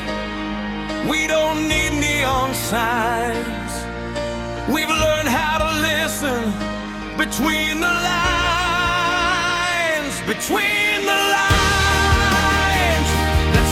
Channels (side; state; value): both; identical; correlation 1.00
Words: we don't need neon signs. We've learned how to listen between the lines, between the lines.